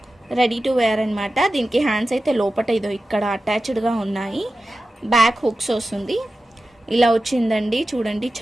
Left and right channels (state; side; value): normal; both; correlation 0.93